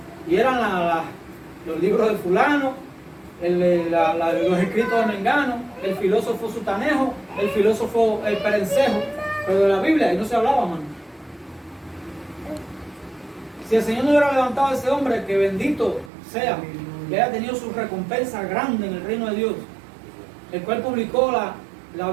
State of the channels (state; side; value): drops out; left; at 16.1 s